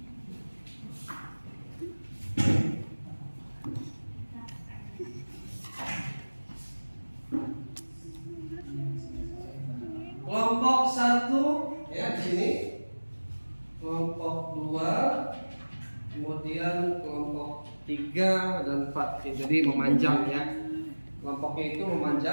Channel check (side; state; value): both; inverted; correlation -1.00